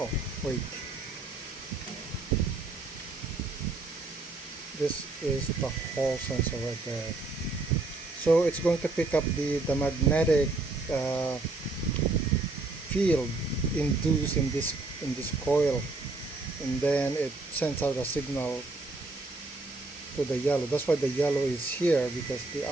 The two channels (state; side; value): quieter; left; 3.4 dB